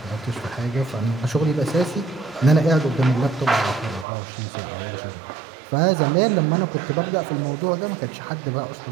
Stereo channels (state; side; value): drops out; left; at 4.0 s